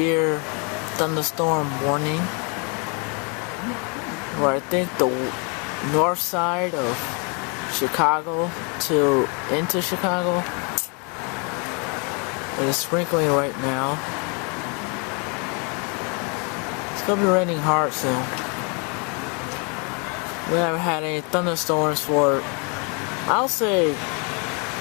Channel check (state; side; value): quieter; right; 34.8 dB